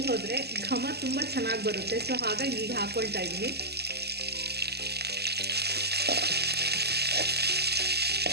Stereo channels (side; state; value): left; late; 0.47 ms